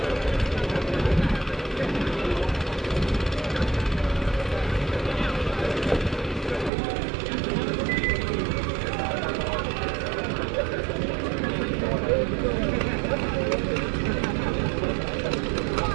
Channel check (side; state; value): left; drops out; at 6.7 s